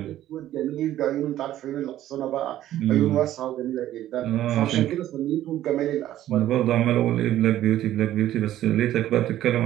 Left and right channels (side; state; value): left; quieter; 13.0 dB